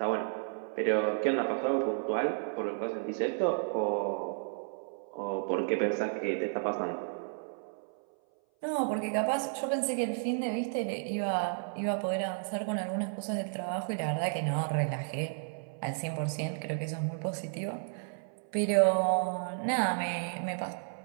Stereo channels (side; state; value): left; silent; 56 dB below the other